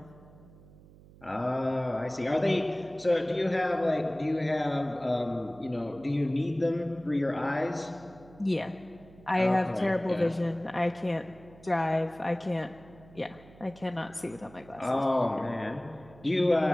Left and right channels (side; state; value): right; noise; hum, 22 dB below the sound